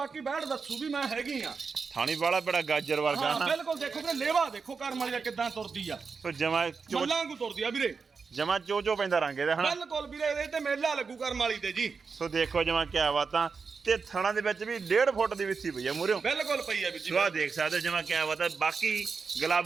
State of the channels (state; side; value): quieter; left; 5.1 dB